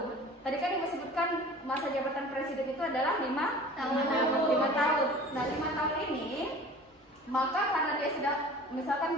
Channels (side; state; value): both; normal; correlation 0.43